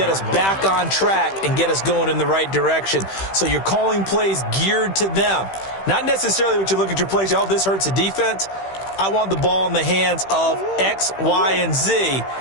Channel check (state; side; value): late; right; 15 ms